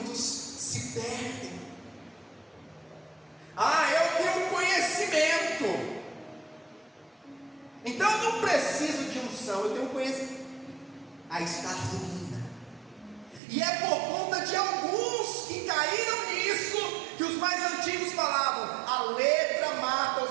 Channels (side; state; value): left; drops out; at 13.4 s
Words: se perdem. Eu tenho conhecimento, então eu não preciso de unção, eu tenho conhecimento. Aí está a ruína. E é por conta de alguns que caíram nisso que os mais antigos falavam: a letra mata, ou